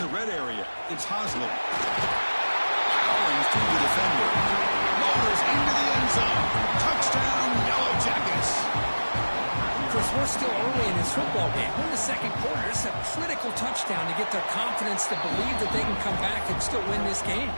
red area, it's Hosley. Powering through the defender. Lowers into the end zone. Touchdown, Yellow Jackets. Chris, we're still early in this football game. We're in the 2nd quarter. It's a critical touchdown to get their confidence to believe that they can come back and still win this game.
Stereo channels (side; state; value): both; inverted; correlation -1.00